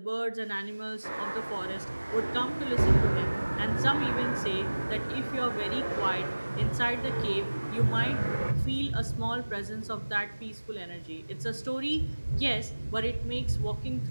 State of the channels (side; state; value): both; inverted; correlation -1.00